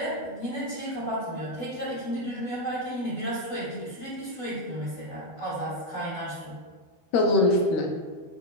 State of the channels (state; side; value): late; right; 12 ms